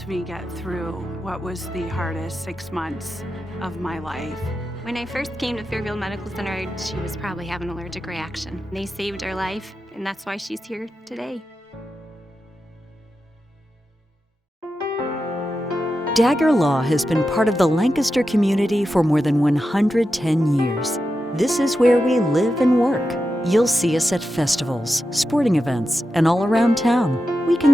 me get through what was the hardest 6 months of my life. When I first came to Fairfield Medical Center, she was probably having an allergic reaction. They saved her life, and that's why she's here today. Dagger Law has been part of the Lancaster community for more than 110 years. This is where we live and work. You'll see us at festivals, sporting events, and all around town. We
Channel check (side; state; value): both; normal; correlation 0.90